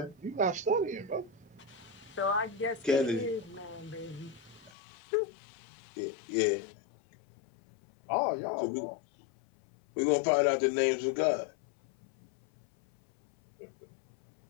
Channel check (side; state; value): right; drops out; at 4.7 s